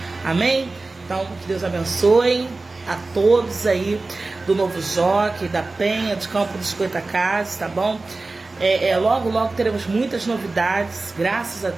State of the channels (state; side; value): quieter; left; 3.4 dB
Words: amém? Então, que Deus abençoe a todos aí do Novo Jockey, da Penha, de Campo dos Goitacazes, tá bom? Logo, logo teremos muitas novidades, graças a